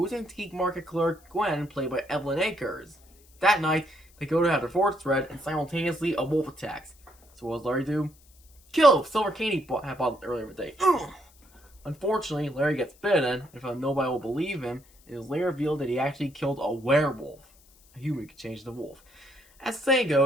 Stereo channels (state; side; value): noise; left; hiss, 29 dB below the sound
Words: antique market clerk Gwen, played by Evelyn Akers. That night, they go to have their forts read, and simultaneously a wolf attacks. So what does Larry do? Kill Silver Cane he bought earlier that day. Unfortunately, Larry gets bitten, and found nobody will believe him, it is later revealed that he actually killed a werewolf. A human could change the wolf. As the saying